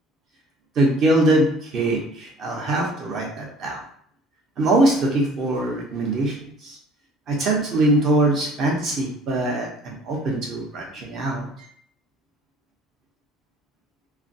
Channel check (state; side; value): normal; both; correlation 0.52